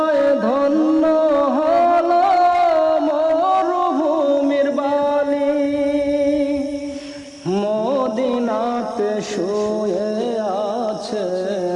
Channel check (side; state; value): both; identical; correlation 1.00